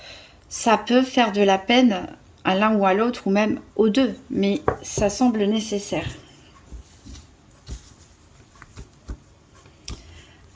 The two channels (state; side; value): identical; both; correlation 1.00